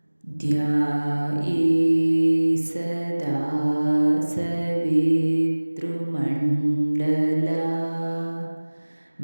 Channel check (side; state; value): both; inverted; correlation -1.00